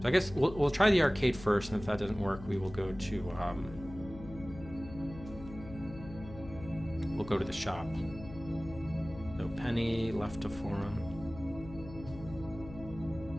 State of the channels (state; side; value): noise; left; hum, 14 dB below the sound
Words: So I guess we'll try the arcade first, and if that doesn't work, we will go to the shop. So Penny left to forum.